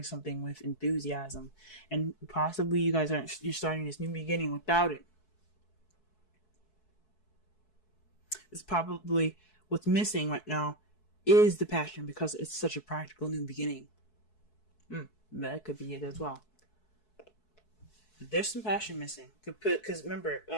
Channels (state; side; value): late; right; 4.6 ms